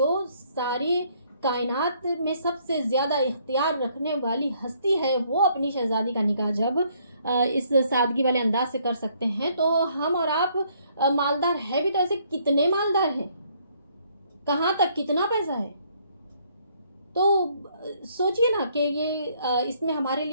ساری کائنات میں سب سے زیادہ اختیار رکھنے والی ہستی ہے وہ اپنی شہزادی کا نکاح جب اس سادگی والے انداز سے کر سکتے ہیں تو ہم اور آپ مالدار ہے بھی تو ایسے کتنے مالدار ہیں, کہاں تک کتنا پیسہ ہے. تو سوچئے نا کہ یہ اس میں ہمارے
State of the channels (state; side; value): inverted; both; correlation -0.67